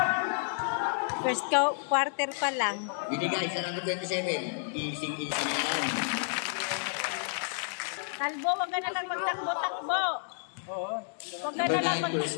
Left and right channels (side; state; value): right; silent; digital silence